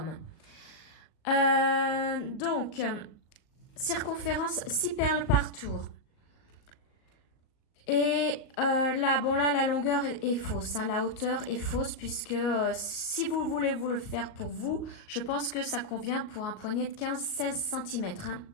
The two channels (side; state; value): right; late; 38 ms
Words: Donc, circonférence 6 perles par tour. Et là, bon là, la longueur est fausse, hein, la hauteur est fausse puisque si vous voulez vous le faire pour vous, je pense que ça convient pour un poignet de 15-16 cm, hein,